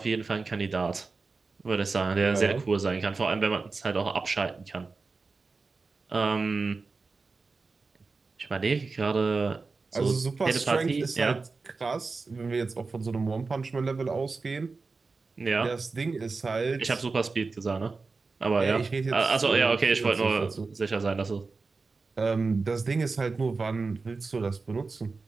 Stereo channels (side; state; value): left; quieter; 4.1 dB